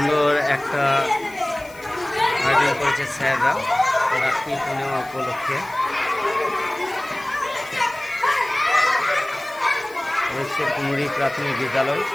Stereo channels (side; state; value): left; noise; hiss, 23 dB below the sound